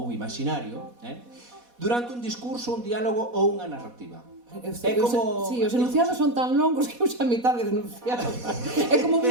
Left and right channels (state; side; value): late; left; 4.1 ms